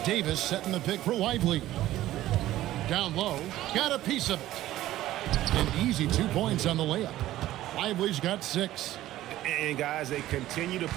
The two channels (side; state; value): left; quieter; 14.6 dB